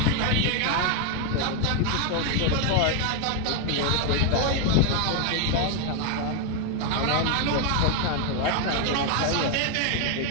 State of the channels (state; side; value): different; both; correlation 0.01